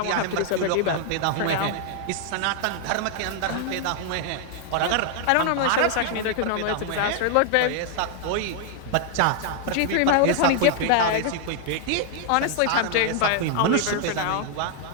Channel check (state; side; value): different; both; correlation 0.00